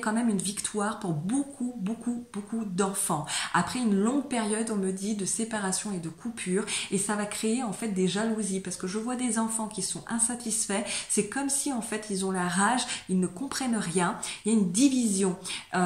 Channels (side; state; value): both; identical; correlation 1.00